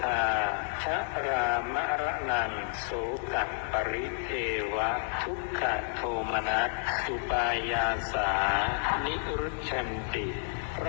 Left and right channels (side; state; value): right; silent; digital silence